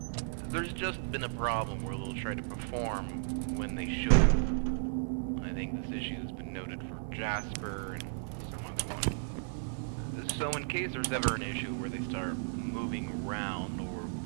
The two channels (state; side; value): silent; left; 55 dB below the other